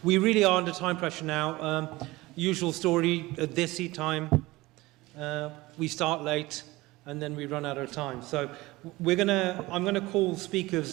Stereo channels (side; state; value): left; quieter; 20.2 dB